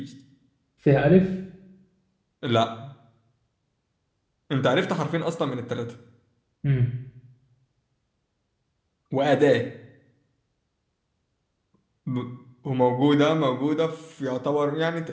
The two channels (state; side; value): identical; both; correlation 1.00